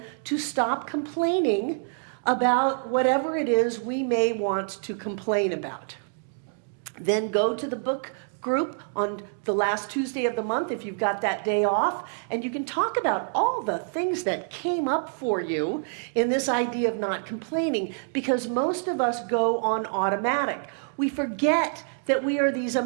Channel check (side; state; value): left; silent; digital silence